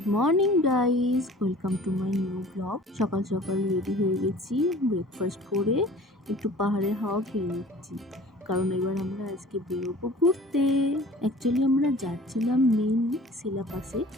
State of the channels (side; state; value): both; normal; correlation 0.46